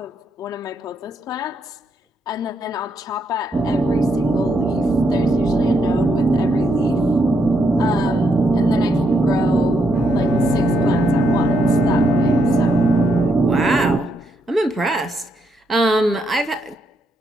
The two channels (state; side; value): normal; both; correlation 0.78